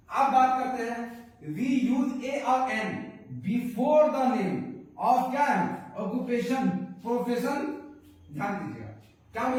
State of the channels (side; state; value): both; identical; correlation 1.00